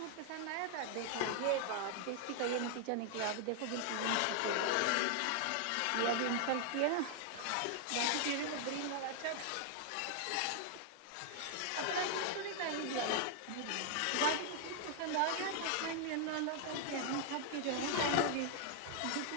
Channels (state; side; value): different; both; correlation 0.00